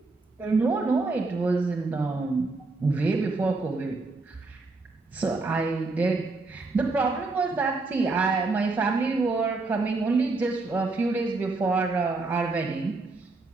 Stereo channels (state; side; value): quieter; left; 3.6 dB